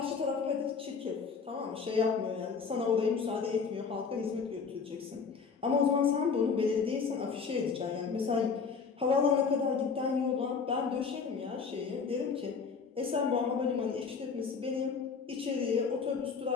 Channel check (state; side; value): quieter; right; 5.5 dB